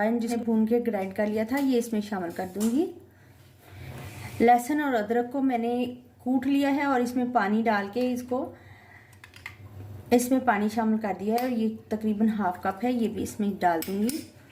जिसे भून के ग्राइंड कर लिया था ये इसमें शामिल कर दूंगी। लहसुन और अदरक को मैंने कूट लिया है और इसमें पानी डाल के इसमें पानी शामिल कर दिया है और ये तकरीबन 1/2 कप है, ये भी इसमें डाल दूंगी।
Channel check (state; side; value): identical; both; correlation 1.00